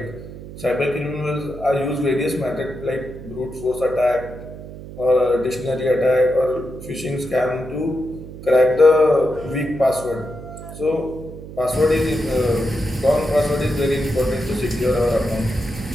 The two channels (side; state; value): right; noise; hum, 13 dB below the sound